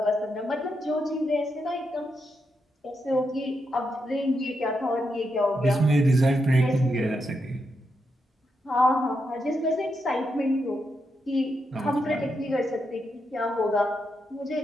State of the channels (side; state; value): both; normal; correlation 0.83